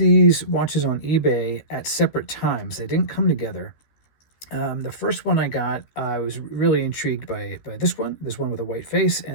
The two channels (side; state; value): right; late; 13 ms